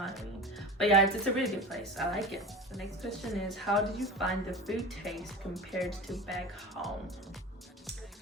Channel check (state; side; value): normal; both; correlation 0.31